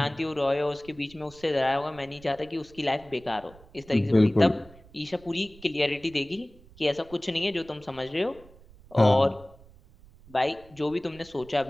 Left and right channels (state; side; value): noise; right; rumble, 24 dB below the sound